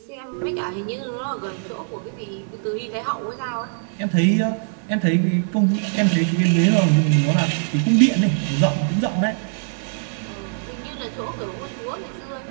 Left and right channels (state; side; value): silent; left; digital silence